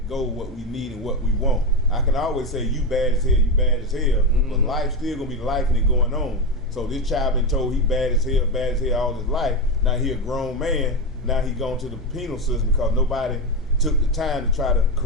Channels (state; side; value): normal; both; correlation 0.13